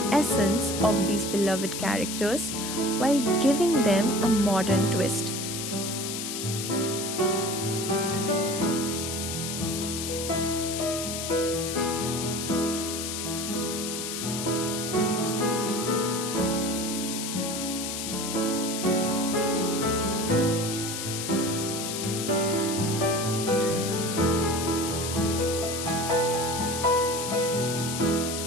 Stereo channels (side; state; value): left; noise; hiss, 4 dB below the sound